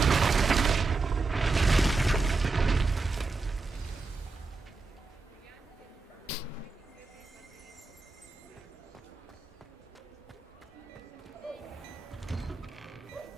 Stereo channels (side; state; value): left; quieter; 4.0 dB